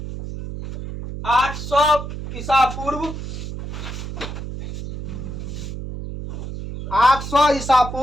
800 ईसा पूर्व 800 ईसा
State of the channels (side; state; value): right; noise; hum, 8 dB below the sound